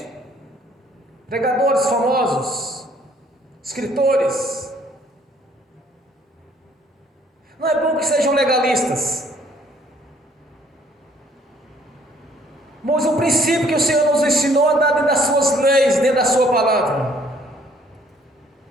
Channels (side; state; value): both; normal; correlation 0.61